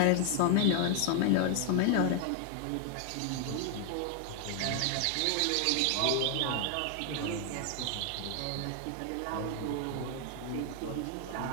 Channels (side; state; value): both; different; correlation 0.00